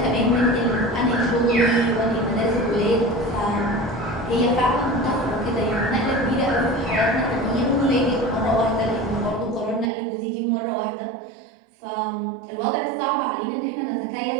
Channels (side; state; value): left; drops out; at 9.9 s